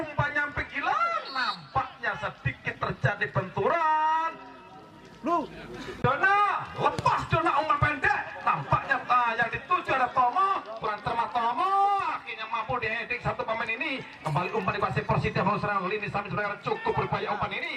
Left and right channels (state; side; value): identical; both; correlation 1.00